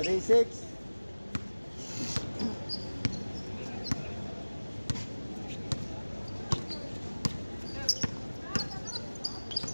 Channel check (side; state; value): both; inverted; correlation -1.00